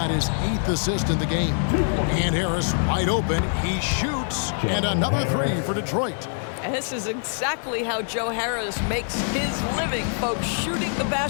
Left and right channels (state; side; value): silent; right; 62 dB below the other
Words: his 8th assist in the game. And Harris wide open. He shoots. And another 3 for Detroit. And this is exactly how Joe Harris makes his living, folks. Shooting the